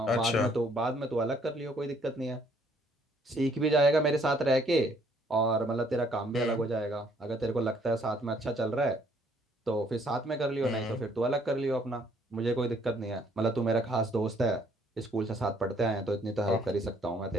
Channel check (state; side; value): normal; both; correlation 0.64